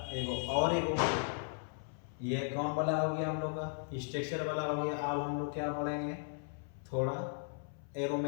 एक ये कौन वाला हो गया हम लोग का, स्ट्रक्चर वाला हो गया। अब हम लोग क्या पढ़ेंगे, थोड़ा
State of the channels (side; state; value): right; silent; 53 dB below the other